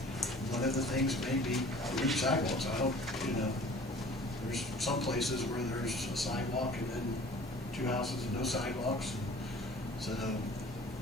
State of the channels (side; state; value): both; normal; correlation 0.47